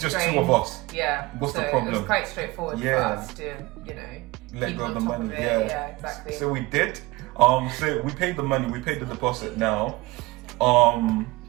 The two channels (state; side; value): quieter; left; 21.9 dB